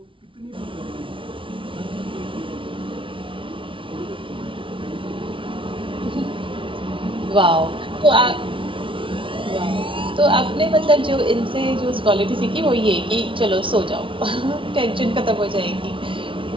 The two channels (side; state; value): left; late; 0.25 ms